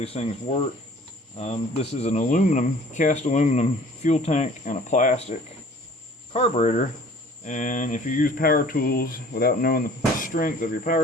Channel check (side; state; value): both; normal; correlation 0.51